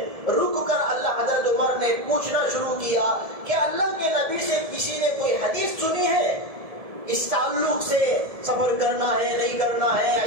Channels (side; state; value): left; late; 1.7 ms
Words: رک کر اللہ حضرت عمر نے پوچھنا شروع کیا کہ اللہ کے نبی سے کسی نے کوئی حدیث سنی ہے اس تعلق سے، سفر کرنا ہے نہیں کرنا ہے،